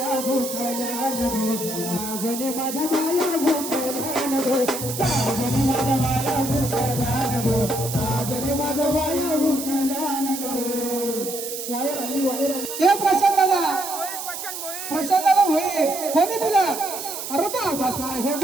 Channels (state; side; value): noise; right; hiss, 7 dB below the sound